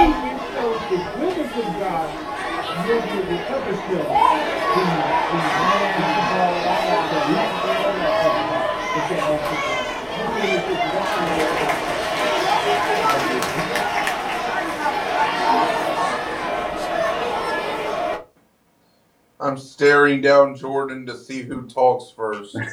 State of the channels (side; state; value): both; identical; correlation 1.00